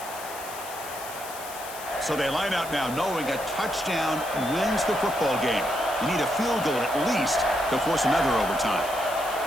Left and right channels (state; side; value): noise; left; hiss, 13 dB below the sound